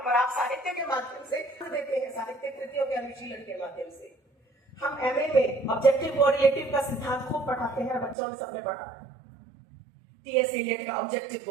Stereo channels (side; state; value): left; drops out; at 8.2 s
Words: आप साहित्य के माध्यम से देते हैं, साहित्य कृतियों के अनुशीलन के माध्यम से। हम एमए में ऑब्जेक्टिव कोरिलेटिव का सिद्धांत खूब पढ़ाते हैं, बच्चों ने सबने पढ़ा है। टीएस इलियट का ऑब्जेक्टिव